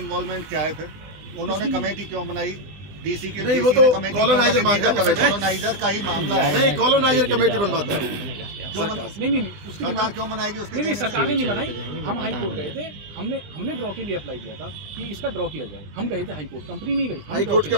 क्या है? फिर उन्होंने कमेटी क्यों बनाई? डीसी के नहीं, वो तो कॉलोनाइजर मांगता कमेटी, कॉलोनाइजर का ही मामला है। नहीं, कॉलोनाइजर कमेटी बनवाता है सरकार। नहीं उसकी सरकार क्यों बनाएगी? उसके नहीं, सरकार ने नहीं बनाई। हम हाई कोर्ट गए थे, हमने ड्रॉ के लिए अप्लाई किया था कि इसका ड्रॉ किया जाए। हम गए थे हाई कोर्ट, कंपनी नहीं गई, हाई कोर्ट के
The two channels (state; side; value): late; left; 20 ms